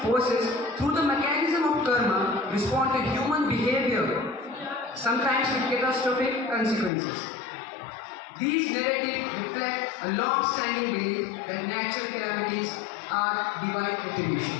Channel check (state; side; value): drops out; right; at 6.9 s